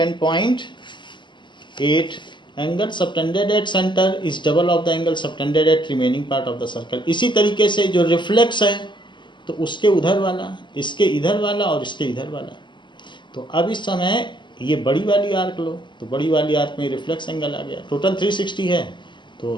angle subtended at center is double of the angle subtended at remaining part of the circle। इसी तरीके से जो रिफ्लेक्स है, तो उसके उधर वाला, इसके इधर वाला और इसके इधर वाला। तो अब इस समय ये बड़ी वाली आर्क लो, तो बड़ी वाली आर्क में रिफ्लेक्स एंगल आ गया, टोटल 360 है,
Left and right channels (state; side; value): late; right; 0.22 ms